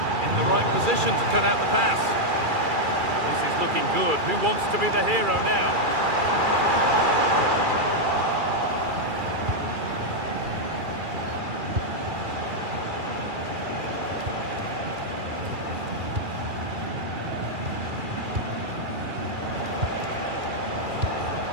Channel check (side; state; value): left; late; 2.4 ms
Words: In the right position to cut out the pass. This is looking good. Who wants to be the hero now?